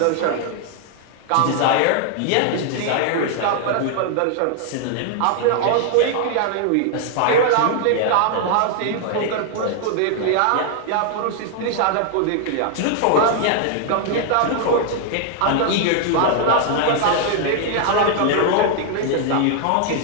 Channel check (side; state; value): both; different; correlation 0.00